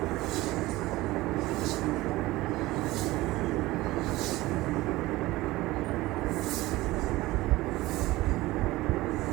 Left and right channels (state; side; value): quieter; left; 18.8 dB